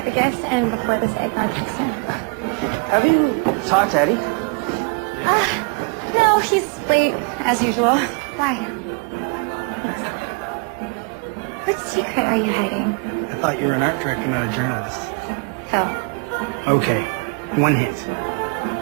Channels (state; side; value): quieter; left; 35.2 dB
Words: the gifts and before this other project's done. Have you talked to Eddie? No, he's late, as usual. Why? What secret are you hiding? I thought you were an art director, not a journalist. Phil. Okay, one hint.